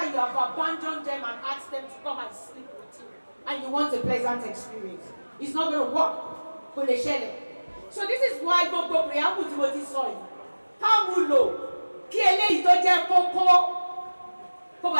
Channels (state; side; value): inverted; both; correlation -1.00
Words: you have abandoned them and asked them to come and sleep with you. And you want a pleasant experience. It's not going to work. So this is why gbogbo preamble tí mo ti sọ yìí. Ká mú lò kí eléyìí tó jẹ́ kókó kó